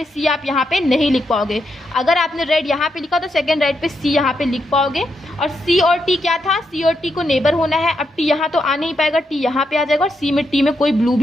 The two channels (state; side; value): normal; both; correlation 0.82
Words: सी आप यहाँ पे नहीं लिख पाओगे। अगर आपने रेड यहाँ पे लिखा तो सेकंड राइट पे सी यहाँ पे लिख पाओगे। और सी और टी क्या था, सी और टी को नेबर होना है। अब टी यहाँ तो आ नहीं पाएगा, टी यहाँ पे आ जाएगा, और सी में टी में कोई ब्लू